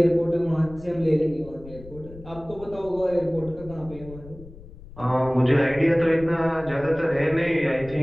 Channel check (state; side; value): noise; left; rumble, 18 dB below the sound